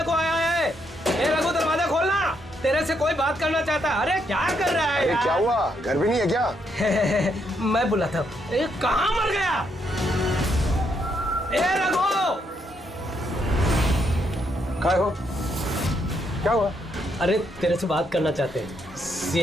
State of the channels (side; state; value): both; normal; correlation 0.76